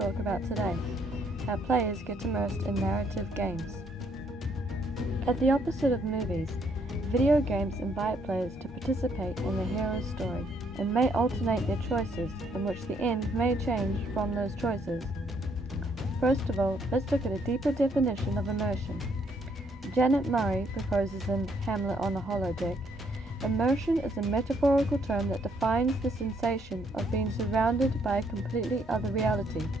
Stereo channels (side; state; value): both; normal; correlation 0.70